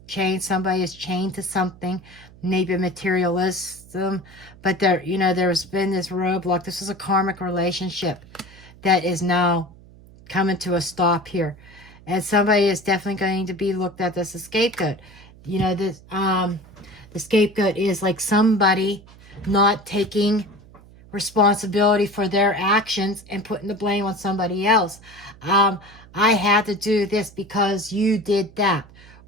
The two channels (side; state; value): right; noise; hum, 23 dB below the sound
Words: chain, somebody is chained to something, maybe materialism. But there, you know, there's been this roadblock. This is a karmic relationship that is now coming to a stop here. And somebody is definitely going to be looked at as a scapegoat. You know, this the scapegoat is like somebody not taking responsibility for their actions and putting the blame on somebody else. I had to do this because you did that,